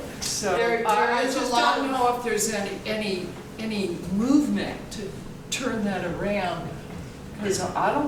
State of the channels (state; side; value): identical; both; correlation 1.00